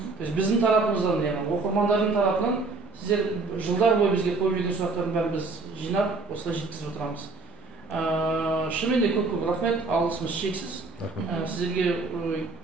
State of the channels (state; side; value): quieter; left; 4.0 dB